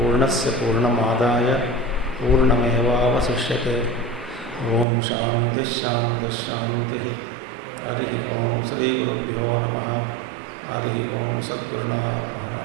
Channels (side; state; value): left; drops out; at 4.9 s